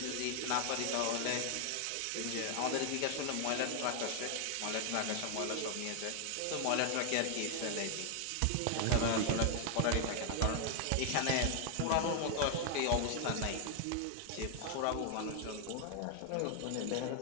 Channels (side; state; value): both; different; correlation 0.00